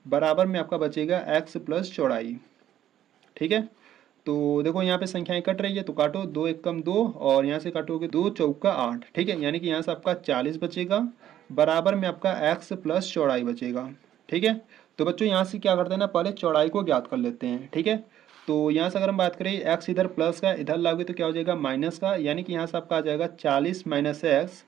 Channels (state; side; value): quieter; left; 11.6 dB